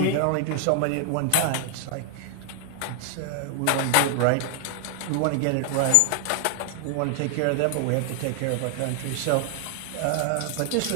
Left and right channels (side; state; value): both; different; correlation 0.00